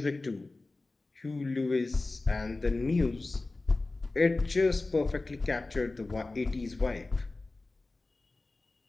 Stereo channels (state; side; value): quieter; right; 3.3 dB